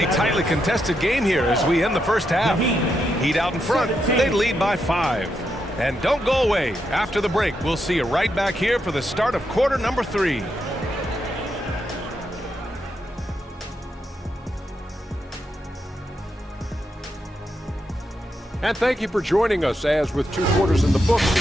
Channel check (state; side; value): normal; both; correlation 0.83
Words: tightly contested game here as we end the first half. Heat out in front. They lead by 5. And don't go away. After the break, we'll see you right back here for the start of quarter number 3. And thank you for joining us as with 2 quarters in the books,